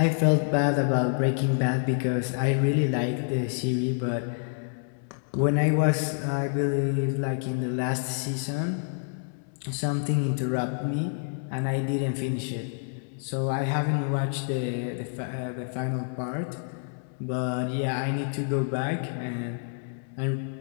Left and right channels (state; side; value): silent; right; 59 dB below the other